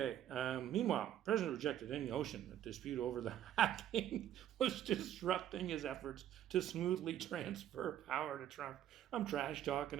meanwhile, the President rejected any notion that dispute over the hacking was disrupting his efforts to smoothly transfer power to Trump. I'm trash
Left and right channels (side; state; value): left; quieter; 11.2 dB